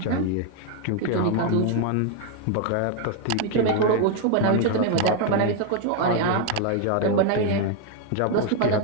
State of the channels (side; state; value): both; different; correlation 0.01